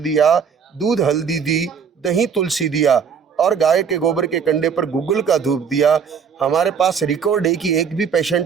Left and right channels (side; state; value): left; quieter; 6.6 dB